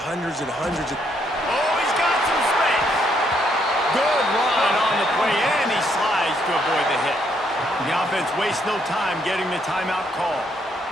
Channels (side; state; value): both; normal; correlation 0.72